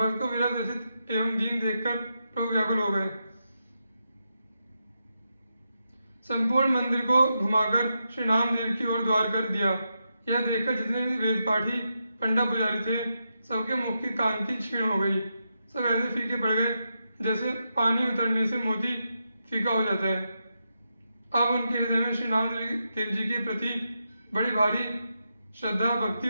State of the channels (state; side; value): inverted; both; correlation -0.85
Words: को विरह व्यथित एवं दीन देखकर प्रभु व्याकुल हो गए। संपूर्ण मंदिर को घुमाकर श्री नामदेव की ओर द्वार कर दिया। यह देखकर जितने भी वेद पाठी पंडा पुजारी थे, सबके मुख की कांति क्षीण हो गई। सब ऐसे फीके पड़ गए जैसे पानी उतरने से मोती फीका हो जाता है। अब उनके हृदय में श्री नामदेव जी के प्रति बड़ी भारी श्रद्धा भक्ति